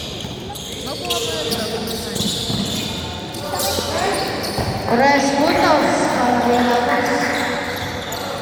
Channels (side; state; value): both; identical; correlation 1.00